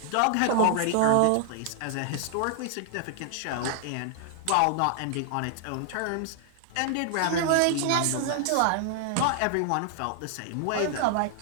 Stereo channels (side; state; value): both; different; correlation -0.01